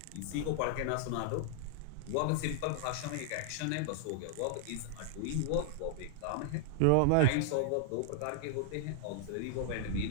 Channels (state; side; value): different; both; correlation 0.00